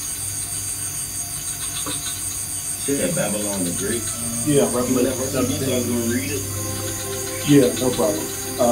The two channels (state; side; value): identical; both; correlation 1.00